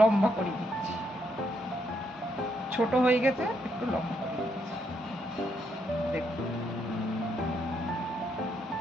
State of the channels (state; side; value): normal; both; correlation 0.76